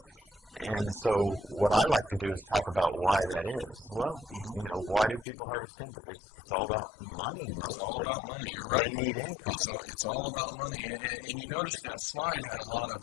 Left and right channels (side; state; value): right; drops out; at 5.2 s